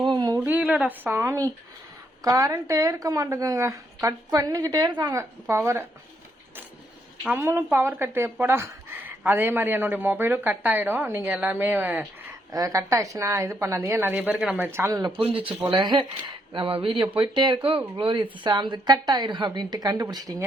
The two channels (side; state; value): both; normal; correlation 0.76